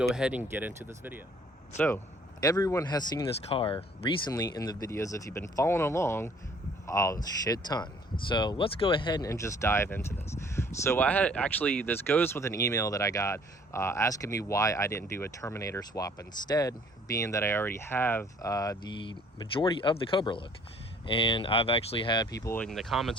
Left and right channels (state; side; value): normal; both; correlation 0.57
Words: ahead and get into this video. So everyone has seen this car recently in the videos if you've been following along a shit ton. So let's go ahead and just dive into this. So I had actually, this goes with an email that I got asking me why I didn't do a Terminator swap instead, being that I already have the majority of the Cobra look. And I've actually had people in the comments